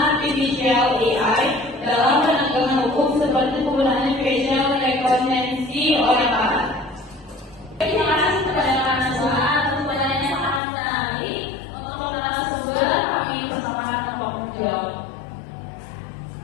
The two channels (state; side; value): drops out; right; at 10.6 s